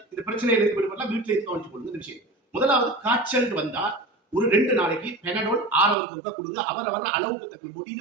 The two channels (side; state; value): left; drops out; at 6.0 s